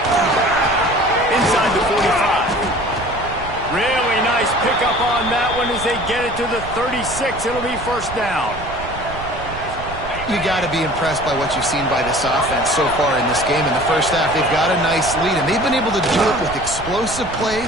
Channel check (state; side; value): noise; right; rumble, 12 dB below the sound